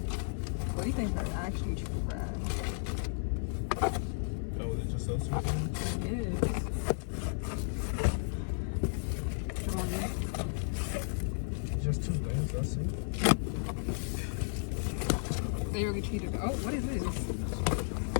What do you think are actually true friends? Oh, is it just those two things? It is. Come on, dude. Just two things, that's it. They really cheated. Oh, what is this?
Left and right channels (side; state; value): right; silent; 55 dB below the other